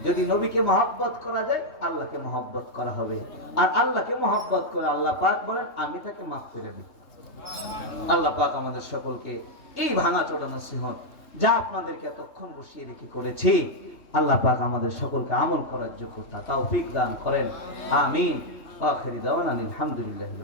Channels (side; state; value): right; late; 3.2 ms